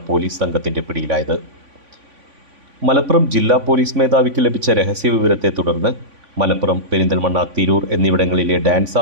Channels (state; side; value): late; left; 3.5 ms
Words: പോലീസ് സംഘത്തിന്റെ പിടിയിലായത്. മലപ്പുറം ജില്ലാ പോലീസ് മേധാവിക്ക് ലഭിച്ച രഹസ്യവിവരത്തെ തുടർന്ന് മലപ്പുറം, പെരിന്തൽമണ്ണ, തിരൂർ എന്നിവിടങ്ങളിലെ ഡാൻസ്